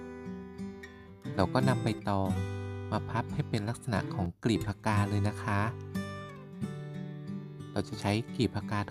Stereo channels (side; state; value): both; identical; correlation 1.00